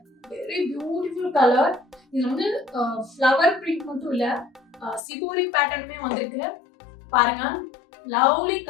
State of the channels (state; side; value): drops out; right; at 5.0 s